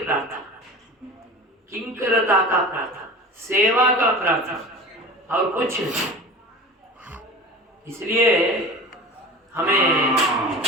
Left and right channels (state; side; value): normal; both; correlation 0.36